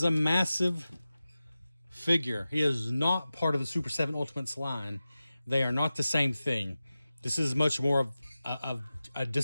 a massive figure. He is not part of the Super 7 Ultimates line. They are not the same thing. This is much more of a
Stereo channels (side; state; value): both; inverted; correlation -0.95